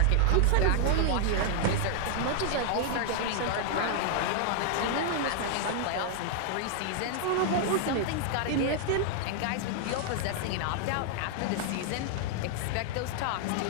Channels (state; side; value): different; both; correlation 0.00